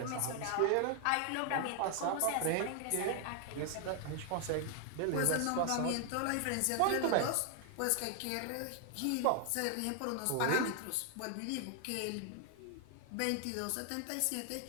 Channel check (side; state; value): both; different; correlation 0.00